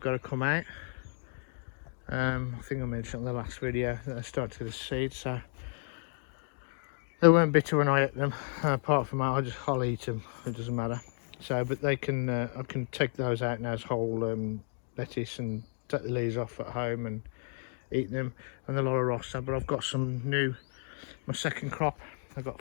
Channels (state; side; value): silent; right; 56 dB below the other